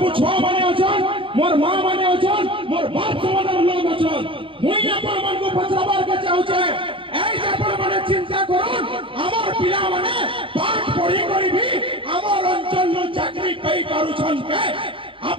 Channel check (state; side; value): late; left; 0.25 ms